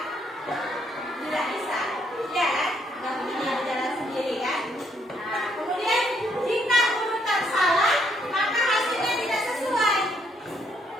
tidak bisa. Ya kan? Nggak mungkin dia berjalan sendiri kan? Nah, kemudian jika urutan salah, maka hasilnya tidak sesuai.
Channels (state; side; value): normal; both; correlation 0.71